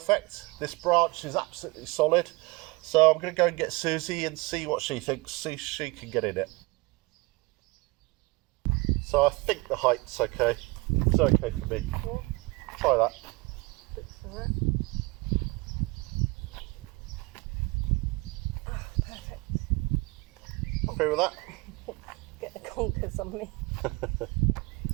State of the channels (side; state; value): left; quieter; 24.8 dB